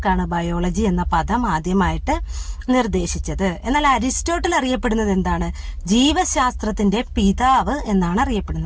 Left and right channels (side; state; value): both; identical; correlation 1.00